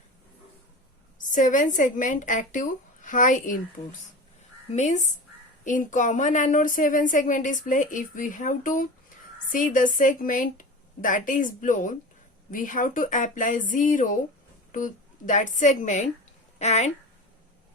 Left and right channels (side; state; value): both; normal; correlation 0.31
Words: 7 segment active high inputs. Means in common anode 7 segment display, if we have to see the segment that is blown, we have to apply 0 to that segment, and